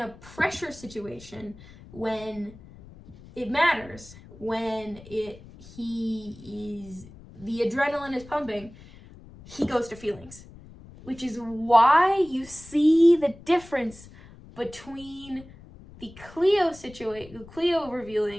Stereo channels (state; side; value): noise; left; rumble, 20 dB below the sound